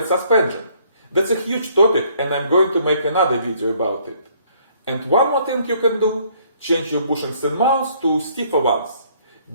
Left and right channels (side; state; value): both; inverted; correlation -0.64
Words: suspension. That's a huge topic, and I'm going to make another video about it. And one more thing you can do, change your bushings and mounts to stiffer ones.